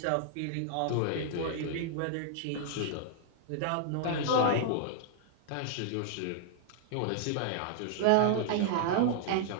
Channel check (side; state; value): both; different; correlation -0.01